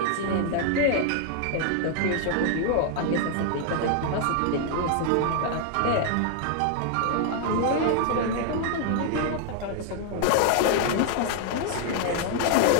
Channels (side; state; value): both; different; correlation 0.00